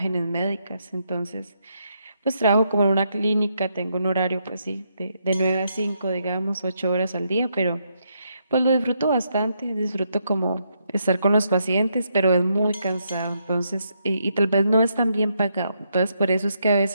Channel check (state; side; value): inverted; both; correlation -0.78